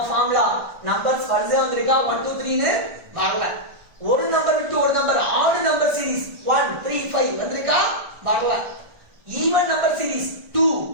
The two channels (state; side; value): late; left; 1.4 ms